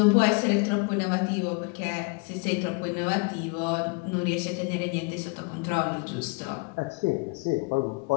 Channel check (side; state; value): right; quieter; 30.4 dB